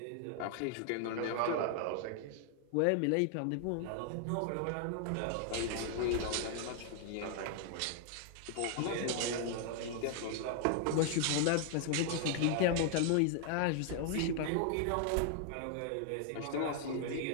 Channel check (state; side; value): different; both; correlation 0.00